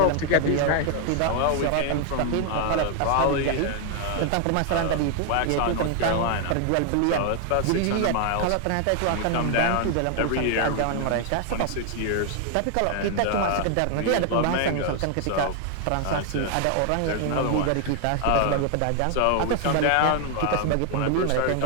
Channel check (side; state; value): both; different; correlation 0.00